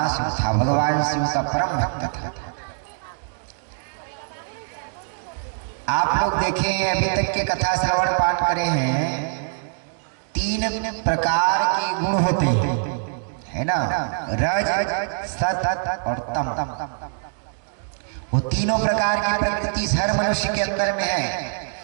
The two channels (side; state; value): left; silent; digital silence